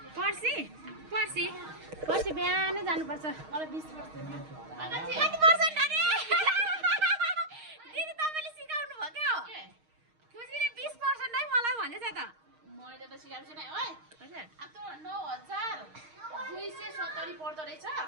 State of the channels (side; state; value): left; late; 6.4 ms